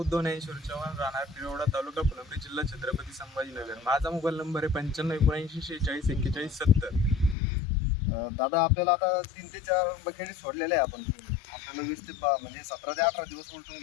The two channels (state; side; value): drops out; right; at 7.4 s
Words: ज्ञानेश्वर चव्हाण, राहणार पिरोडा, तालुका फुलंब्री, जिल्हा छत्रपती संभाजीनगर. माझा मोबाईल नंबर आहे 95794641. दादा आपल्याला आता 3 ते 4 बकेटी सोडलेल्या आहे आपण. आपल्याला 20 ते म्हणजे 17 ते 18 दिवस उलटून